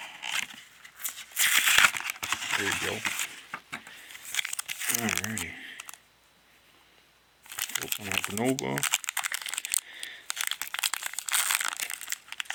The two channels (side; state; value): both; identical; correlation 1.00